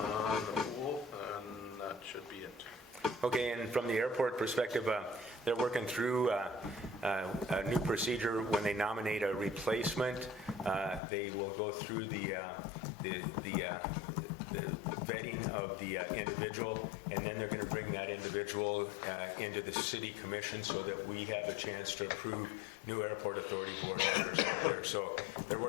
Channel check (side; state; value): right; drops out; at 11.0 s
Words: the pool, and that should be it. Okay, and from the airport perspective, they're working through a new procedure when they nominate a replacement. They will go through the vetting of the individual, and then they're going to bring that individual into the city commission so that we have a chance to approve new airport authority board members out there. So they're